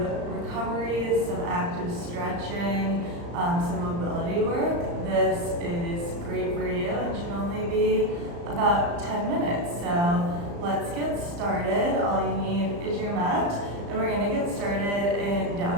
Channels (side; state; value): left; late; 35 ms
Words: recovery, some active stretching, some mobility work. This is great for you and should only be about 10 minutes. So let's get started. All you need is your mat, and we're gonna get started in